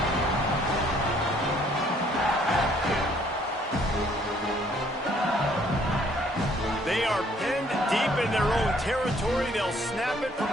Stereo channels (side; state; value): both; normal; correlation 0.63